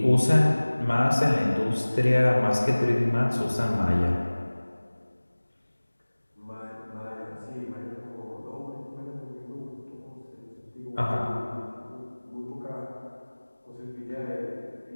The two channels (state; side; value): inverted; both; correlation -1.00